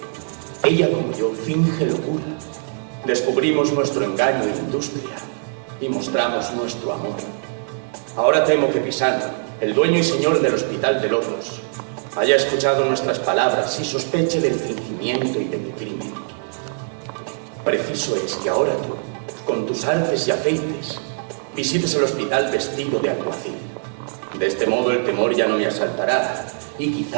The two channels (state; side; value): silent; left; digital silence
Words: Ella, como yo, finge locura. Descubrimos nuestro engaño e industria y mostramos nuestro amor. Ahora temo que Pisano, el dueño y señor del Hospital de Locos, haya escuchado nuestras palabras y sospeche del fingimiento y de mi crimen. Preciso es que ahora tú, con tus artes y aceites, visites el hospital vestido de alguacil. De este modo el temor ya no me asaltará y